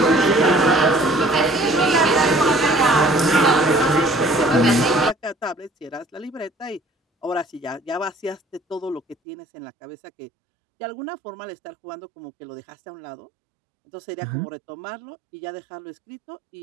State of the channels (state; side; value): drops out; left; at 9.2 s